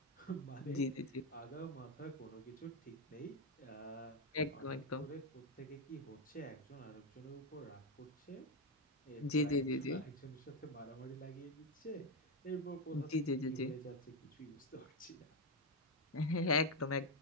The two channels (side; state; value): both; normal; correlation 0.06